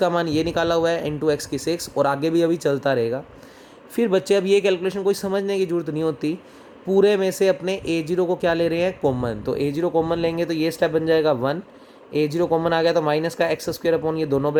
मान ये निकाला हुआ है इंटू एक्स की 6, और आगे भी अभी चलता रहेगा। फिर बच्चे अब ये कैलकुलेशन कोई समझने की ज़रूरत नहीं होती, पूरे में से अपने A0 को क्या ले रहे हैं, कॉमन। तो A0 कॉमन लेंगे तो ये स्टेप बन जाएगा 1, A0 कॉमन आ गया तो माइनस का एक्स स्क्वायर अपॉन ये दोनों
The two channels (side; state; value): both; identical; correlation 1.00